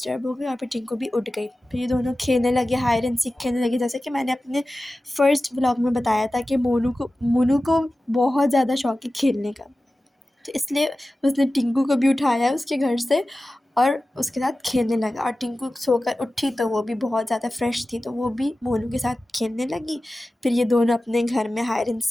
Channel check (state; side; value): normal; both; correlation 0.95